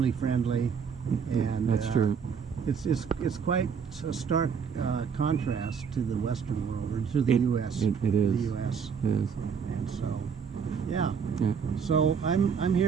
friendly. And that's true. It's quite a stark contrast to the Western world, or to the U.S. It is. The U.S. It is. And so, yeah. So I'm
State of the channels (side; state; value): left; quieter; 6.6 dB